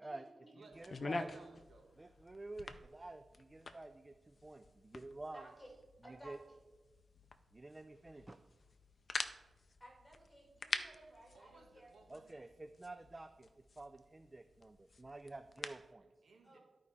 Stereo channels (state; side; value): normal; both; correlation 0.93